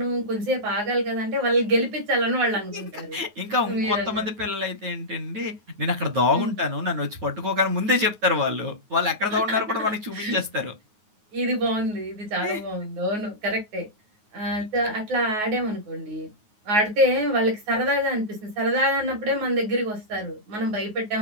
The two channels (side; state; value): left; late; 9.5 ms